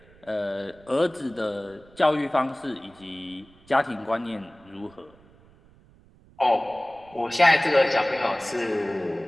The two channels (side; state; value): right; noise; rumble, 27 dB below the sound